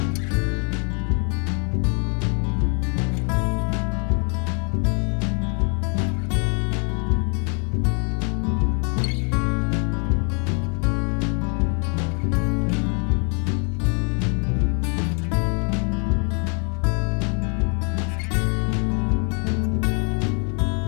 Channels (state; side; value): quieter; right; 38.6 dB